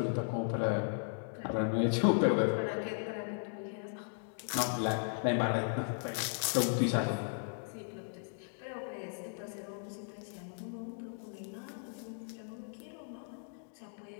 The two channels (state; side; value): silent; right; digital silence